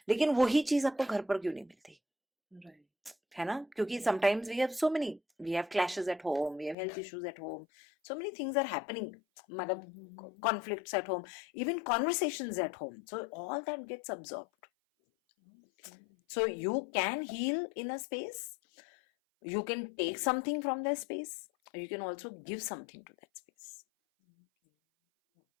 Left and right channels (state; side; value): drops out; right; at 6.8 s